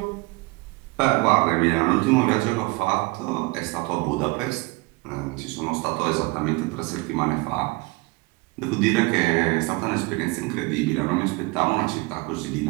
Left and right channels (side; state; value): left; quieter; 24.8 dB